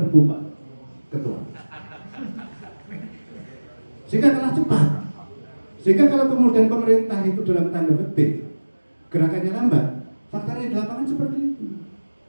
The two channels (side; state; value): both; inverted; correlation -1.00